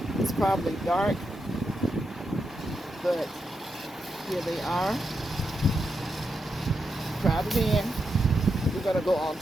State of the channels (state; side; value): normal; both; correlation 0.85